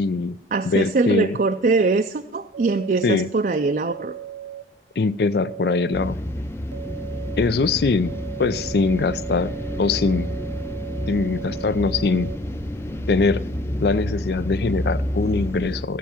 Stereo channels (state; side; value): normal; both; correlation 0.47